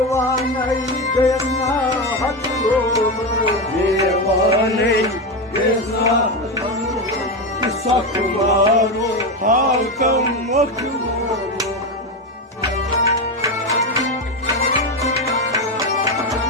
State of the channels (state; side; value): normal; both; correlation 0.14